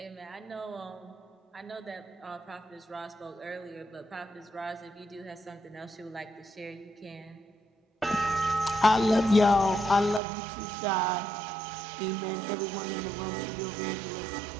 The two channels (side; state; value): left; drops out; at 10.2 s